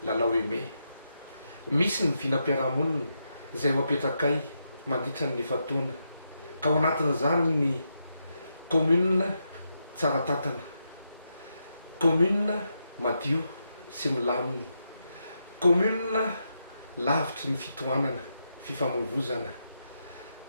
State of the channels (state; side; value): inverted; both; correlation -0.83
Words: lalao eme misy ny vinam-piarahamonina izay ho apetrakay mandritra ny fataona ka ao anatin'izany ny commune tsara tatana, commune madio sy milamina, commune lavitry ny fitohanana fifamoivozana,